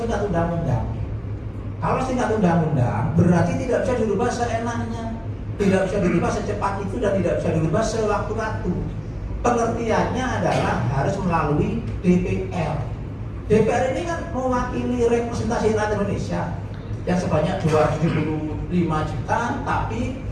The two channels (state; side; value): identical; both; correlation 1.00